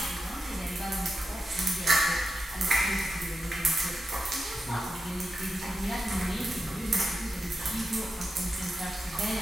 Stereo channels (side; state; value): both; normal; correlation 0.89